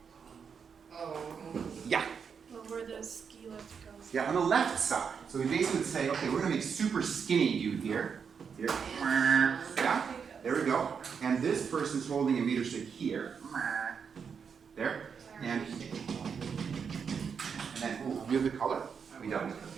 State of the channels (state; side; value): quieter; left; 6.4 dB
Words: Yeah. Well, where the ski lift goes. Yeah, on the left side. So we basically would say, okay, we're going to make super skinny dude here. Here. Yeah. There we go. And this person's holding a meter stick here. There. And then, ooh, we have the color? We don't.